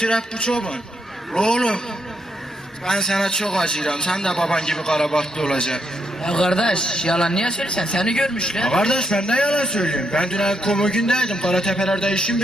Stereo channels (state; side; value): normal; both; correlation 0.78